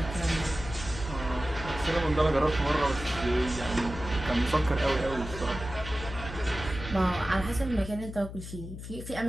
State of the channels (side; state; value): left; noise; hum, 10 dB below the sound